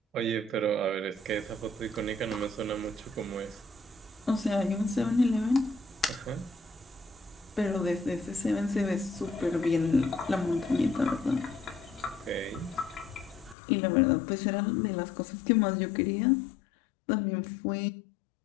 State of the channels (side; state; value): right; drops out; at 13.6 s